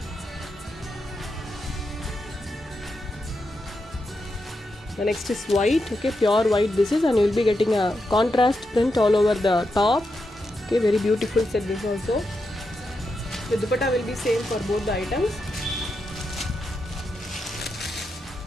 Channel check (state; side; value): normal; both; correlation 0.86